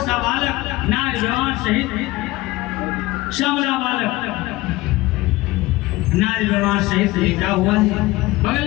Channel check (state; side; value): quieter; right; 19.5 dB